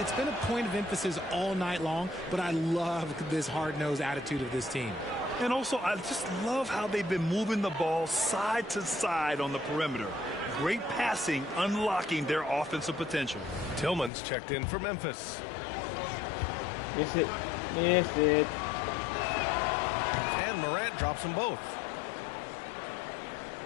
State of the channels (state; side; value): drops out; right; at 14.1 s